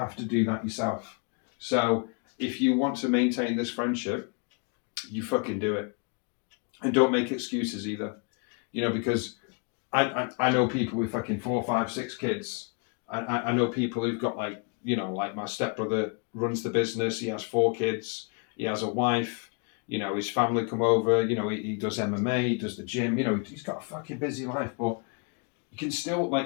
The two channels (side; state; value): right; quieter; 35.7 dB